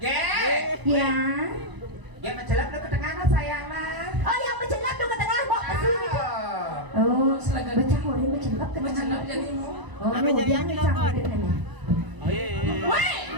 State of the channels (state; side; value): late; left; 1.0 ms